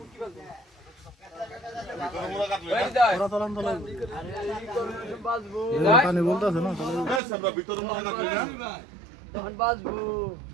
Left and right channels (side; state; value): left; drops out; at 7.2 s